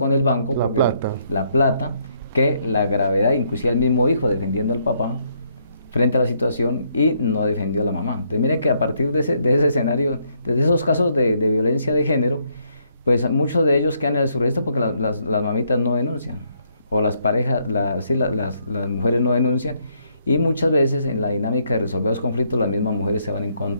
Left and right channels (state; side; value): inverted; both; correlation -0.72